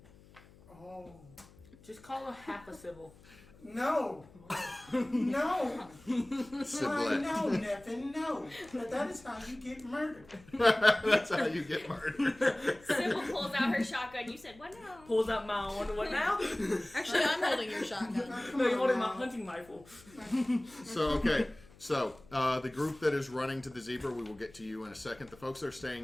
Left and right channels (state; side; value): noise; left; hum, 24 dB below the sound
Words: Oh. Just call her half a Sybil. No. No. Siblet. No, Nefan, no. But that is how you get murdered. That's how you get murdered. Sybil pulls out her shotgun. You said, what now? Pulls out my own. What now? Actually, I'm holding your shotgun. No, you're holding my hunting rifle. So, okay. So, the group that is running to the zebra, we will get to you in a second. The folks that are